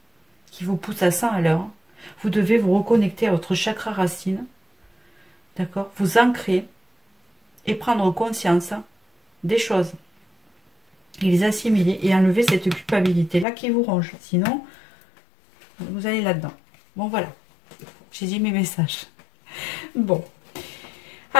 qui vous pousse à 100 à l'heure, vous devez vous reconnecter à votre chakra racine, d'accord? Vous ancrer et prendre conscience des choses. Et les assimiler et enlever cette culpabilité-là qui vous ronge. Sinon, vous allez là-dedans. Bon, voilà. J'ai dit mes messages. Bon.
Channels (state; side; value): drops out; right; at 13.5 s